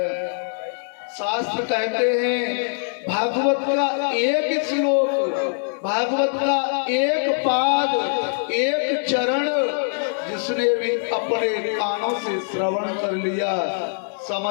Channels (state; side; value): silent; right; 64 dB below the other